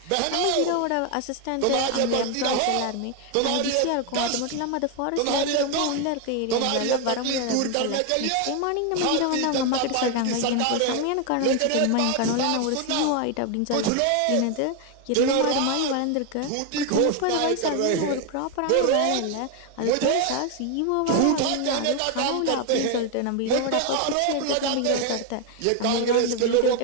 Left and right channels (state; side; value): different; both; correlation 0.01